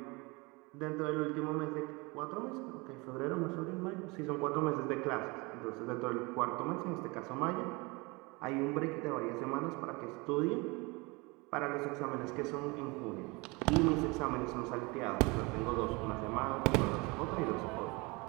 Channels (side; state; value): left; quieter; 26.3 dB